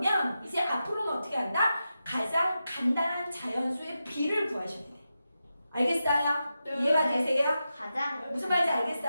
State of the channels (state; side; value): inverted; both; correlation -0.90